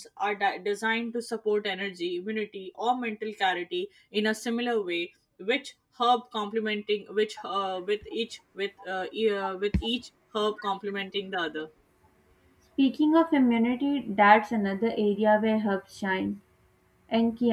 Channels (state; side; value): identical; both; correlation 1.00